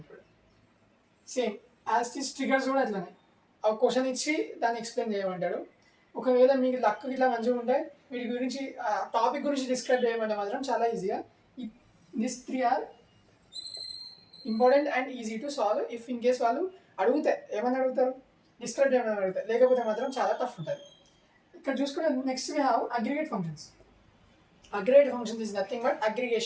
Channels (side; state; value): both; identical; correlation 1.00